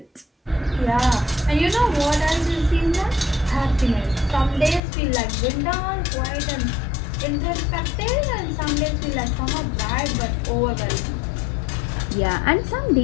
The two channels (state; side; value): drops out; right; at 4.8 s